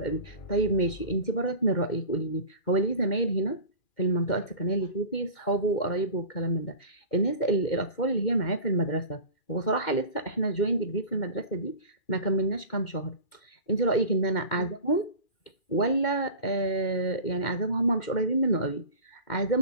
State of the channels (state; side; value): late; right; 2.1 ms